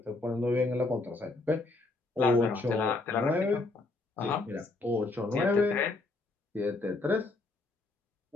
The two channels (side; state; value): right; quieter; 3.3 dB